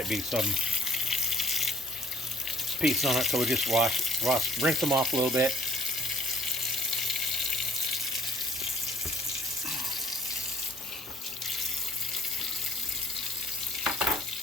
be some piece on it, so we just rinse them off a little bit.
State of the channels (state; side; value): normal; both; correlation 0.58